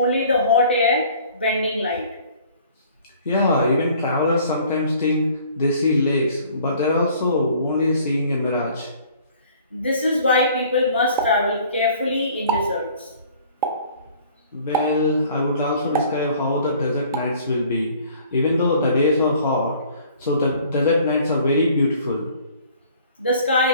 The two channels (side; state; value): both; inverted; correlation -0.53